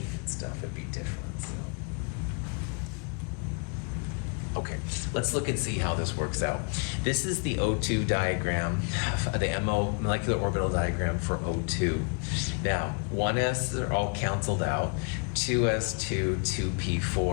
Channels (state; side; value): quieter; right; 38.5 dB